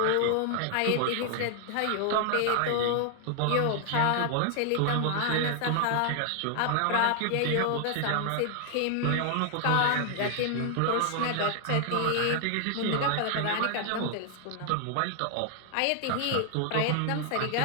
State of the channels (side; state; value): both; different; correlation 0.00